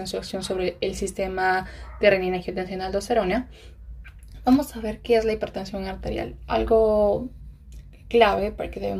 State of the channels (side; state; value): both; identical; correlation 1.00